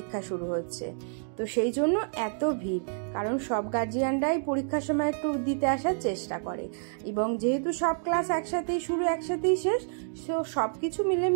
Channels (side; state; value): left; silent; digital silence